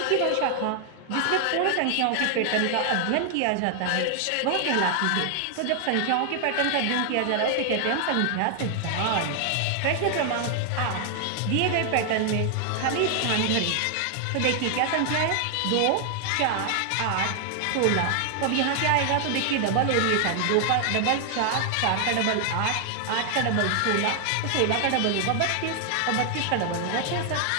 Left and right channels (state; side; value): different; both; correlation 0.00